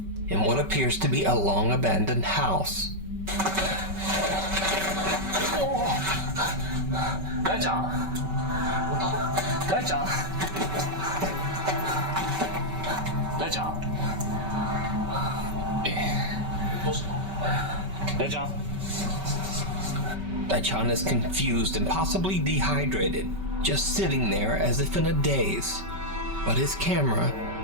in what appears to be a long abandoned house. 大ちゃん、大ちゃん、大ちゃん、どうしたの？大ちゃん。 Daichan is confused and possibly dehydrated, just sitting there as if in a daze. But his camera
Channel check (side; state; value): left; late; 5.2 ms